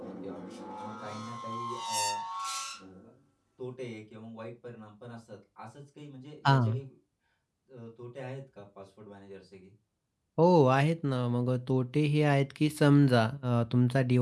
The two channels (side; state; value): both; identical; correlation 1.00